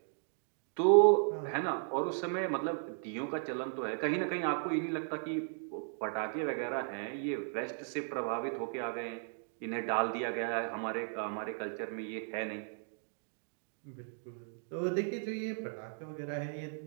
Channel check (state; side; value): silent; left; digital silence